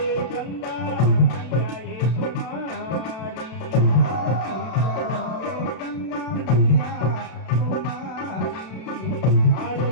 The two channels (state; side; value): late; right; 32 ms